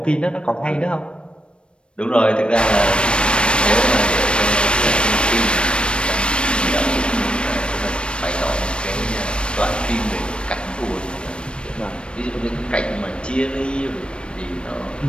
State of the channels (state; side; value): late; right; 0.056 ms